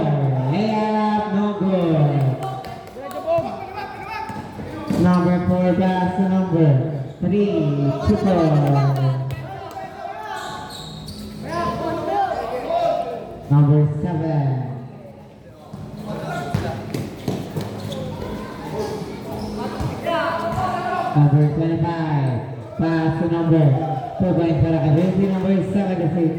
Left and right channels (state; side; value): identical; both; correlation 1.00